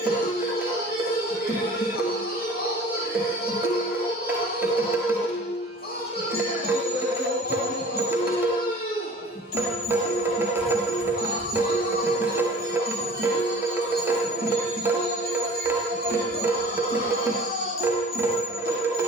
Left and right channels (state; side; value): normal; both; correlation 0.45